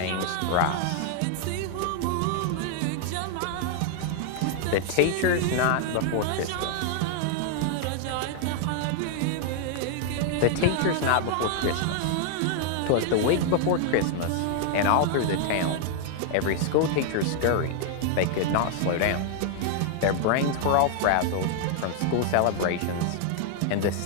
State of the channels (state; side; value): different; both; correlation 0.00